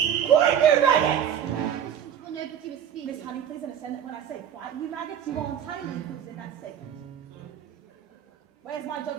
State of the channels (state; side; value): quieter; left; 9.1 dB